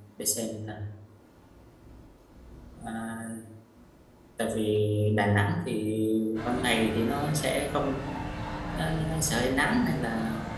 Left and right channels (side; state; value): both; identical; correlation 1.00